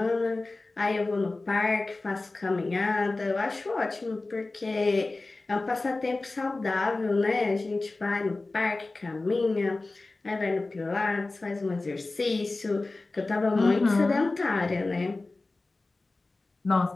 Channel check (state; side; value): quieter; right; 3.3 dB